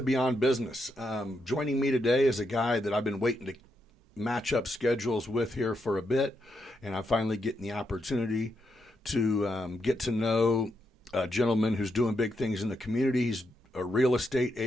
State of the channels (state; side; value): normal; both; correlation 0.82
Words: Beyond Business. Joining me today is a guy that I've been waiting to match up schedules with here for a bit, and I'm finally getting the opportunity to get to know a gentleman who's doing big things in the community. He's a real estate